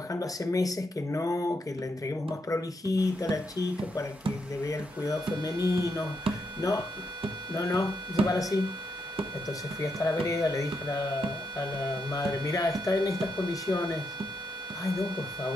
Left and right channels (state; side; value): normal; both; correlation 0.80